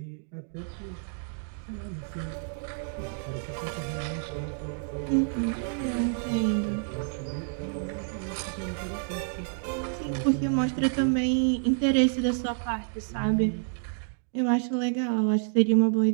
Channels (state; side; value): silent; left; digital silence